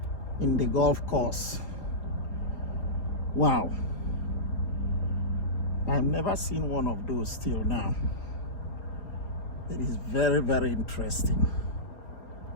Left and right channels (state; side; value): late; right; 4.3 ms